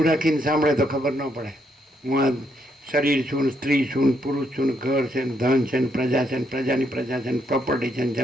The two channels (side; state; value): both; normal; correlation 0.76